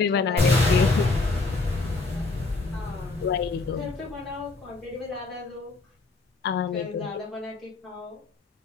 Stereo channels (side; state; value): right; quieter; 3.5 dB